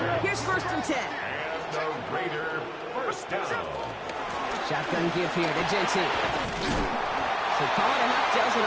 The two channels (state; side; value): identical; both; correlation 1.00